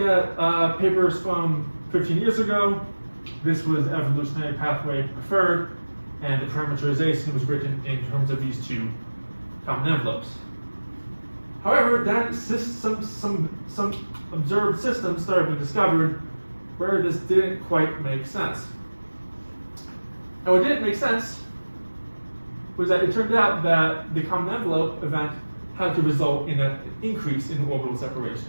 papers from 15 years ago, this was the evolutionary pathway preferred, and the parameterization was written in terms of these two common envelopes. However, then some observed systems started being discovered where this didn't quite make sense. And what didn't make sense was that it turned out that the common envelope event had to result in an increase in orbital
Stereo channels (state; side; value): inverted; both; correlation -1.00